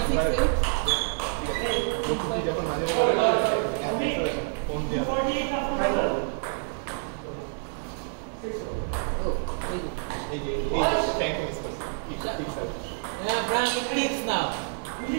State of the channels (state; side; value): silent; left; digital silence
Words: যখন মাঝে ফোন দিয়া এই যে ট্যাঙ্ক মিস করছে ঠিক sir Yeah, Frank, it clicks now.